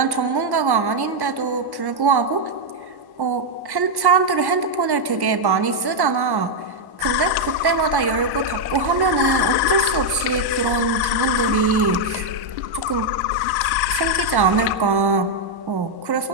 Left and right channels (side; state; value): left; late; 1.1 ms